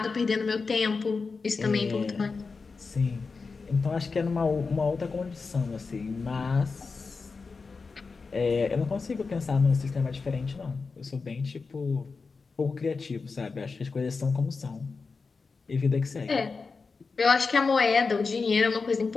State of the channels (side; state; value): right; quieter; 4.5 dB